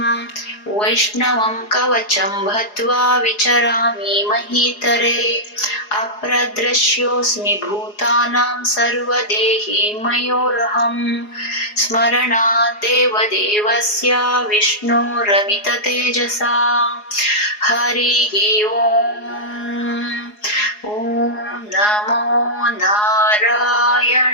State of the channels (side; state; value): right; late; 4.8 ms